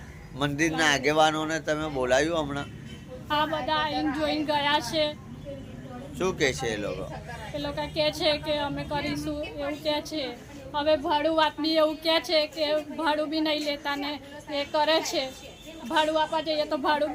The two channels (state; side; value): identical; both; correlation 1.00